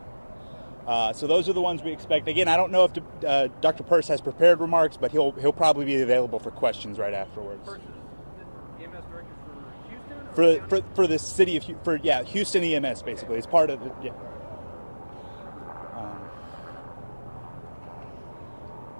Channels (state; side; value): inverted; both; correlation -1.00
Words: So those are the ones we expect. Again, I don't know if Dr. Purse has prepared remarks, but he'll probably be available for questions right afterwards. EMS director for Houston? For the city of Houston EMS basically. It's part of the